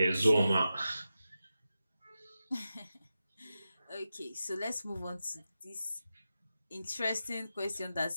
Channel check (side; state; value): both; inverted; correlation -0.91